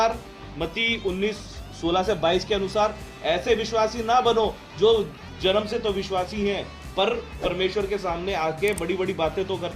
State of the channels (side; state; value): both; identical; correlation 1.00